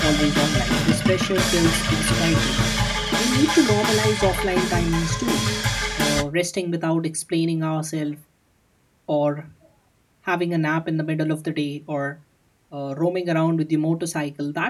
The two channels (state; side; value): identical; both; correlation 1.00